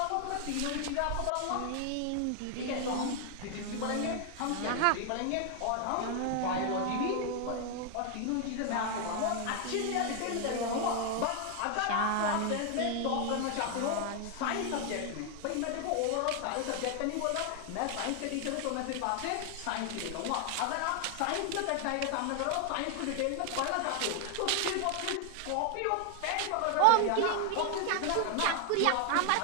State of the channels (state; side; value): different; both; correlation 0.00